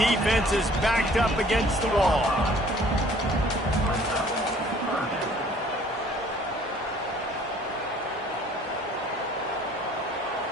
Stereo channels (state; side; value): normal; both; correlation 0.55